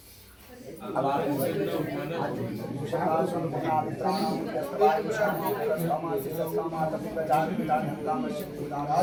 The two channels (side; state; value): both; identical; correlation 1.00